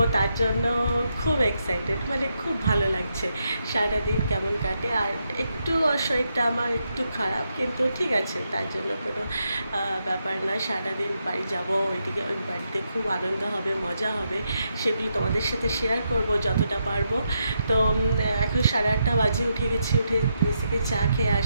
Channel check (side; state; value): both; inverted; correlation -0.82